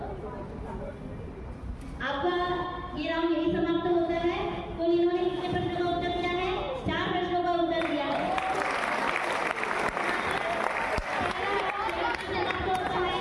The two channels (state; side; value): identical; both; correlation 1.00